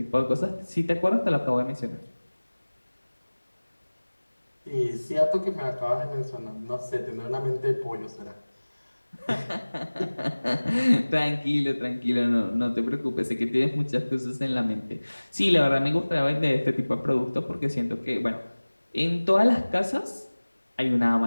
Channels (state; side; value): inverted; both; correlation -1.00